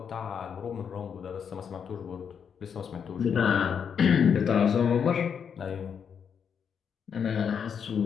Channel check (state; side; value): quieter; right; 7.2 dB